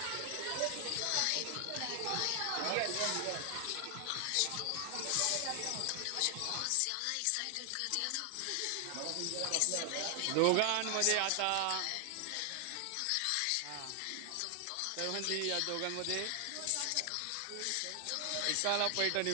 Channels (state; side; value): different; both; correlation 0.00